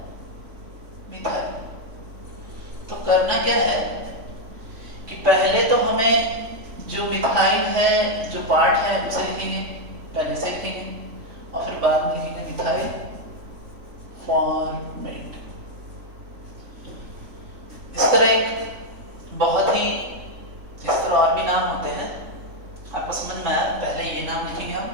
मिथाइल। तो करना क्या है कि पहले तो हमें जो मिथाइल है जो पार्ट है उसे लिखेंगे, पहले से लिखेंगे और फिर बाद में लिखेंगे मिथाइल फॉर्मेट। इस तरह एक बहुत ही इस तरह और भी नाम होते हैं, आपको समझ में आया। पहले ये नाम लिखेंगे हम,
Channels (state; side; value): late; left; 3.5 ms